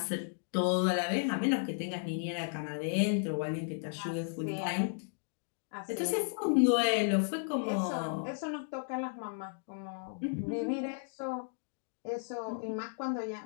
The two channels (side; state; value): right; silent; digital silence